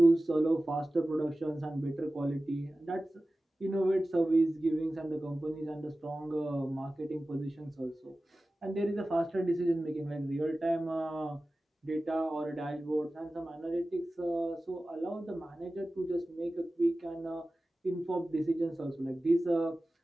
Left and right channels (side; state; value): both; normal; correlation 0.96